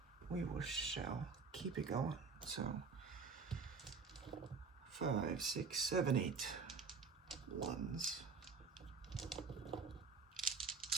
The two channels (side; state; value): left; quieter; 5.0 dB